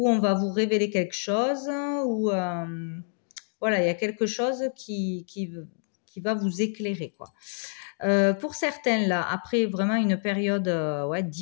on va vous révéler quelque chose, ou voilà, il y a quelque chose qui va vous éclairer, quoi. Pour certains, là, après vraiment une période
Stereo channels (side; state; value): right; silent; digital silence